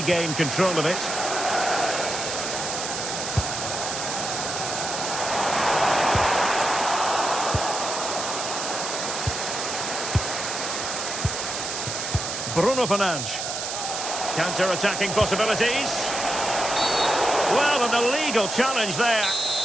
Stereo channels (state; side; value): noise; right; hiss, 4 dB below the sound